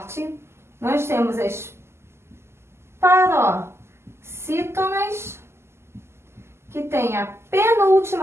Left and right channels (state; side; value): late; left; 0.12 ms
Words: Nós temos as paroxítonas, que tem a